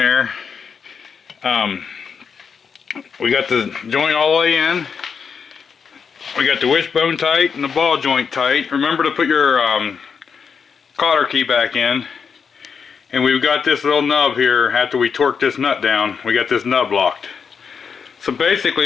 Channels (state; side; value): quieter; right; 6.2 dB